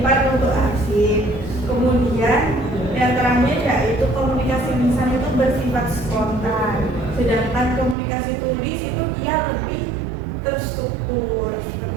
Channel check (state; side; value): drops out; left; at 8.0 s